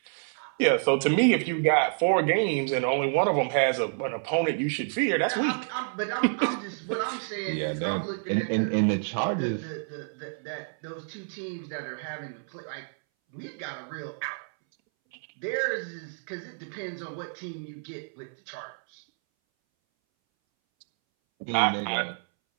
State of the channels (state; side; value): silent; left; 59 dB below the other